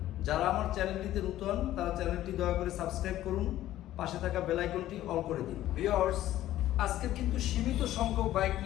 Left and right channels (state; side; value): quieter; right; 13.8 dB